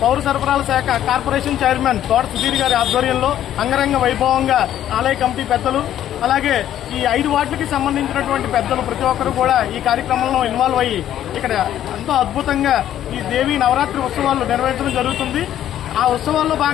పౌర సరఫరాల శాఖ కార్పొరేషన్ చైర్మన్ తోట సుధీర్ గారి ఆధ్వర్యంలో అంగరంగ వైభవంగా ఆలయ కమిటీ పెద్దలు అలాగే ఈ 5 వార్డులకి సంబంధించినటువంటి పెద్దలు ప్రతి ఒక్కరు కూడా ఈ కార్యక్రమంలో ఇన్వాల్వ్ అయ్యి ఇక్కడ ఎంతో అద్భుతంగా ఈ దేవి నవరాత్రి ఉత్సవాలు నిర్వహించడం జరుగుతుంది. ఆ ఉత్సవాల్లో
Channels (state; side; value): quieter; right; 11.4 dB